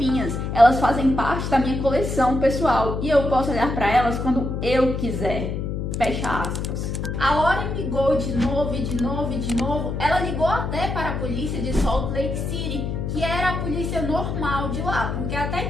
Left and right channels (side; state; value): left; noise; hum, 3 dB below the sound